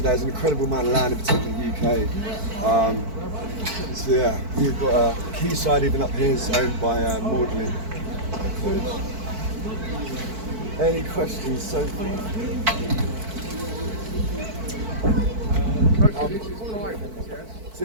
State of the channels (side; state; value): left; late; 4.5 ms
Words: There's an incredible amount of land, in particular in the UK. So yeah, we've got a quayside even up here is owned by Magdalene College. Any questions so far? So